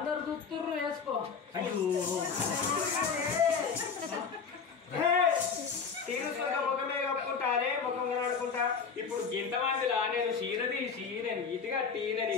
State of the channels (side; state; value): right; quieter; 5.8 dB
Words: దుత్తుర్రు వేసుకో ముఖమే కప్పుకుంటారే ముఖం కనడుకుంటా ఇప్పుడు గింతమందిలా నేను చీరది నేను ఇటుగట్టి